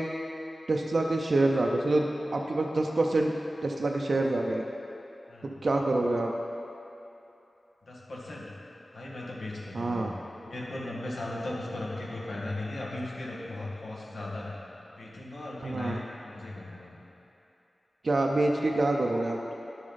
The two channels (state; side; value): normal; both; correlation 0.95